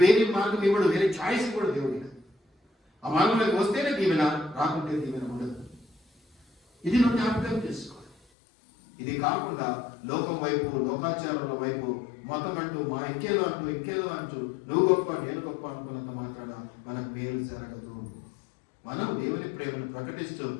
వేరే మార్గం ఇవ్వడు, వేరే ఛాయిస్ కూడా దేవుడిగా. ఆ మార్గంలోకి వస్తేనే దీవెన, రాకుంటే దీవెన ఉండదు. ఇది నువ్వు జ్ఞాపకం చేసుకోవాలి. ఇది కాకుండా లోకం వైపు, లోకాచారాల వైపు, మతం అంటూ, మా ఇంకేదో అంటూ నువ్వు గొప్ప నేను గొప్ప అనుకున్నంత మాట్లాడ మనకు మేలు జరగదు. మనం దేవుని ప్రేమను ప్రకటిస్తూ,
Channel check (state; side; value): drops out; right; at 8.2 s